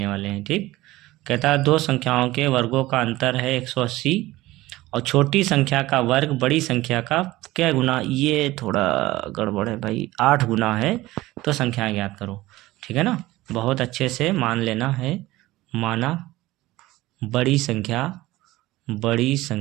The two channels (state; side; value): quieter; left; 17.9 dB